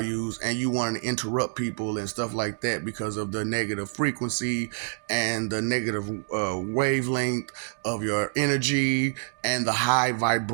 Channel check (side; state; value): left; silent; 60 dB below the other